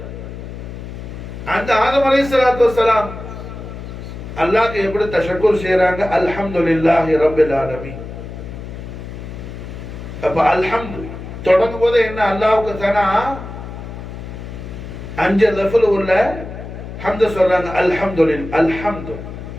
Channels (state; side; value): noise; left; hum, 10 dB below the sound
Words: அந்த ஆதம் அலைஹிஸ்ஸலாத்து வஸ்ஸலாம் அல்லாஹ்க்கு எப்படி தஷக்குர் செய்றாங்க? அல்ஹம்துலில்லாஹி ரப்பில் ஆலமீன். அப்ப அல்ஹம்து தொடங்கும் போது என்ன அல்லாஹ்வுக்கு தனா 5 லஃபல் உள்ள ஹம்து சொல்றாங்க. அல்ஹம்துலில்லாஹ் அல்ஹம்து.